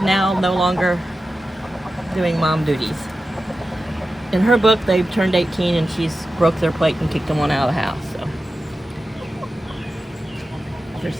now no longer doing mom duties. In her book, they've turned 18 and she's broke their plate and kicked them on out of the house. So they're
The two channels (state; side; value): normal; both; correlation 0.92